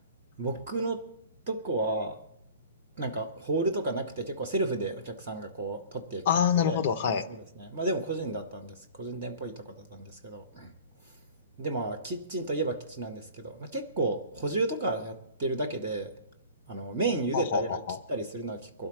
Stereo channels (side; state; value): both; inverted; correlation -0.41